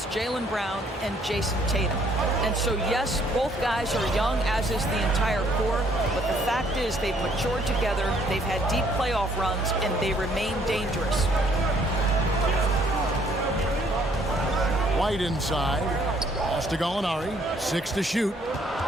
Jaylen Brown and Jason Tatum. And so, yes, both guys are young, as is the entire core, but the fact is they've matured together, they've had deep playoff runs, and they remain dangerous. White inside. Pass to Gallinari. 6 to shoot.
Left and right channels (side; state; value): both; normal; correlation 0.64